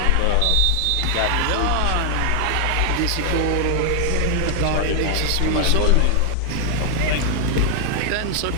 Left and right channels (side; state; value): both; different; correlation 0.00